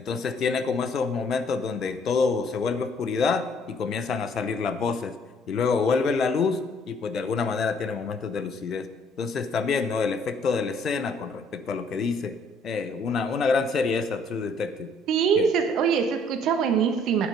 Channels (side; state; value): both; normal; correlation 0.62